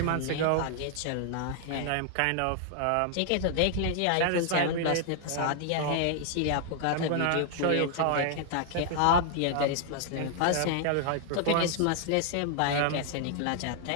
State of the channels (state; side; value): different; both; correlation -0.01